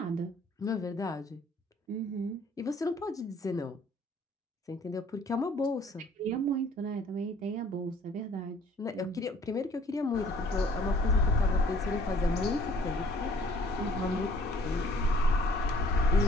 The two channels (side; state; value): both; normal; correlation 0.57